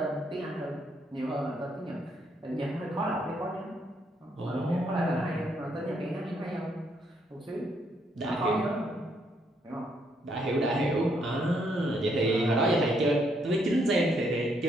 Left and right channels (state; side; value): normal; both; correlation 0.73